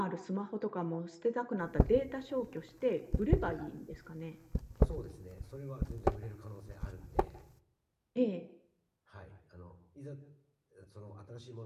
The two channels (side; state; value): both; identical; correlation 1.00